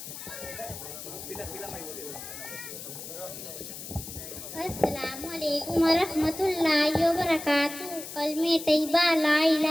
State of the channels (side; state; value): left; noise; hiss, 10 dB below the sound